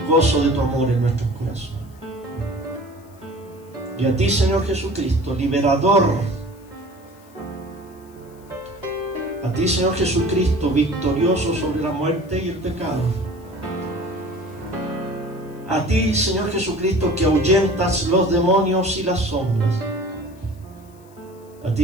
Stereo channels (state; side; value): noise; left; hiss, 29 dB below the sound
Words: gozo de tu amor en nuestros corazones. Y a ti, Señor Jesucristo, liberador, a ti, Señor Jesucristo, victorioso sobre la muerte y el pecado, a ti, Señor Jesucristo, que ahuyentas los demonios y las sombras, a